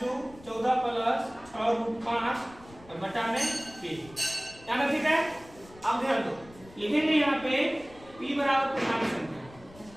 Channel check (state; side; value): noise; left; rumble, 22 dB below the sound